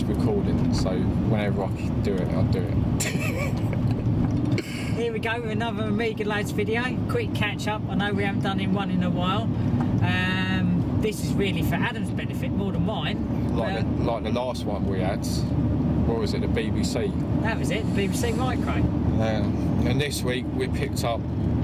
recording, so whenever I can do it, I'll do it. Here we go with another Amiga Lads video. Quick catch up. I know we haven't done one in a while. This is really for Adam's benefit more than mine. Like the last one we had. What was it? The BBC. That was it. The BBC Micro. And this week we picked up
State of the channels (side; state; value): both; identical; correlation 1.00